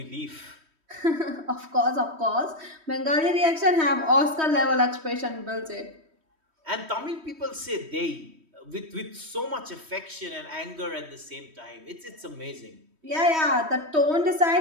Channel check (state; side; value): late; left; 3.1 ms